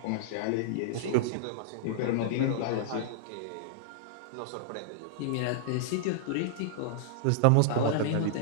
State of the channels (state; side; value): different; both; correlation -0.01